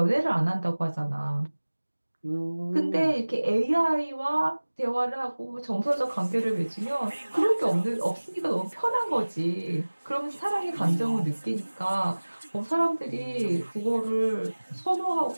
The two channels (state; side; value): inverted; both; correlation -1.00